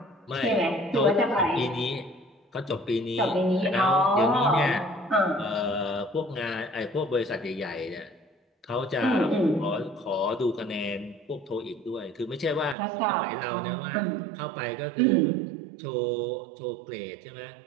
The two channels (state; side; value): drops out; left; at 12.8 s